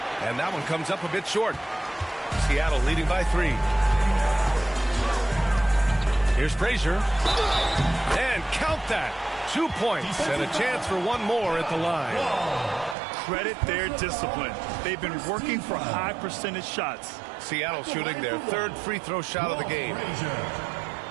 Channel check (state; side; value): drops out; left; at 13.0 s